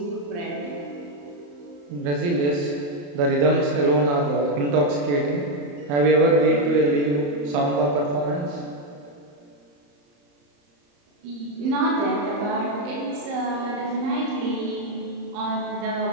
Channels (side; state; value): left; late; 35 ms